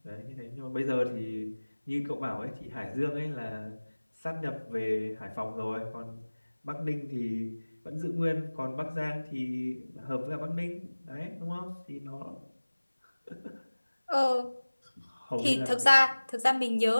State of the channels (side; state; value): both; inverted; correlation -1.00